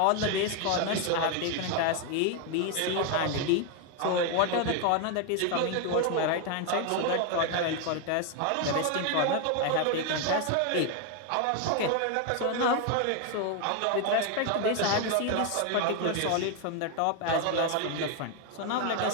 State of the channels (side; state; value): both; different; correlation 0.01